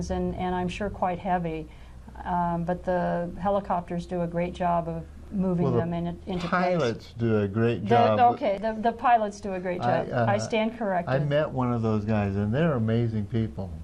and I'm sure quite heavy, but the helicopters do a great job of moving them into place. Pilots do a great job. The pilots do a great job. I stand corrected. I met one of those guys, and they're amazing people.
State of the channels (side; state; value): both; identical; correlation 1.00